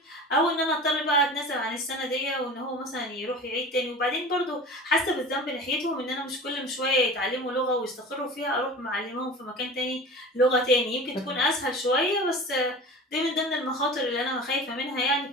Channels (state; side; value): normal; both; correlation 0.36